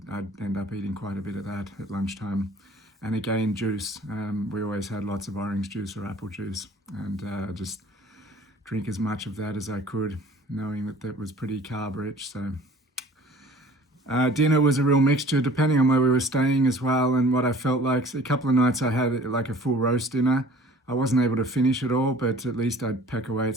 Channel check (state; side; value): normal; both; correlation 0.49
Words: I'd end up eating quite a bit of that at lunchtime. And again, juice. We always had lots of orange juice or apple juice, and just drink as much of that as I could, knowing that was pretty carb rich. So dinner was a real mixture depending on where we were staying as well, and what I felt like. So a couple of nights I had like a full roast dinner. I wasn't able to finish it all, but at least I'd peck away at